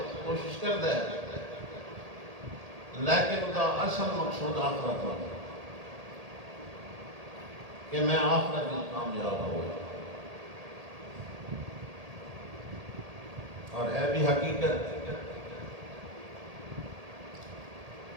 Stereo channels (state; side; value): late; left; 1.8 ms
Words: کوشش کرتا ہے لیکن اس کا اصل مقصود آخرت ہوتا ہے کہ میں آخرت میں کامیاب ہو گیا اور ہے بھی حقیقت